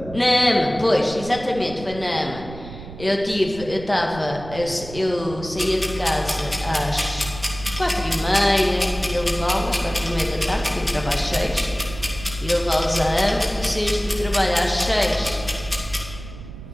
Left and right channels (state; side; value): noise; right; rumble, 14 dB below the sound